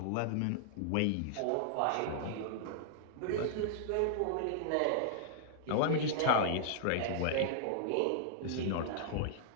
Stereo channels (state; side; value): different; both; correlation -0.01